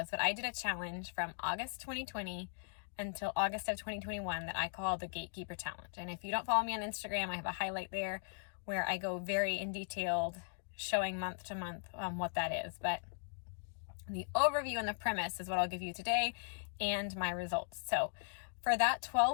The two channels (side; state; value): right; silent; digital silence